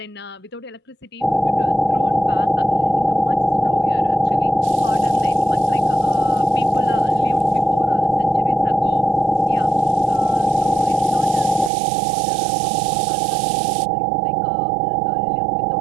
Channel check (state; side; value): drops out; left; at 11.7 s